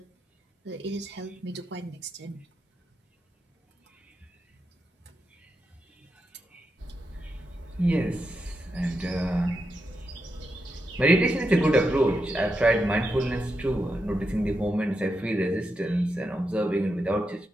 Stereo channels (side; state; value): both; normal; correlation 0.86